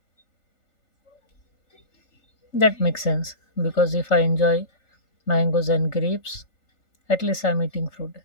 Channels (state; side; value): late; right; 3.4 ms